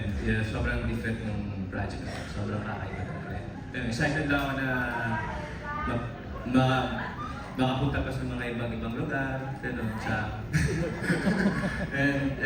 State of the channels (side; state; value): both; identical; correlation 1.00